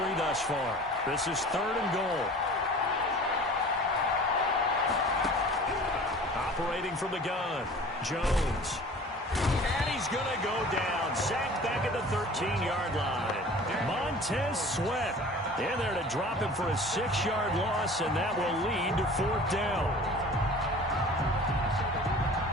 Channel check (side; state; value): both; normal; correlation 0.43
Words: thus far. This is 3rd and goal. Operating from the gun, Jones. And he's going to go down. Sacked back at the 13-yard line. Montez Sweat in there to drop him for a 6-yard loss, and that will lead to 4th down.